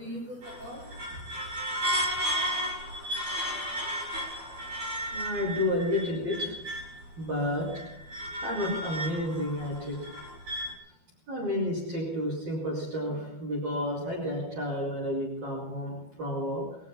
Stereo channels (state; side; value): late; left; 12 ms